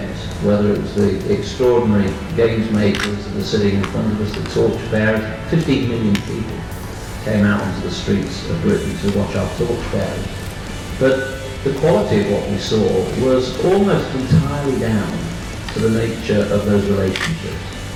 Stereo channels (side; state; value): both; identical; correlation 1.00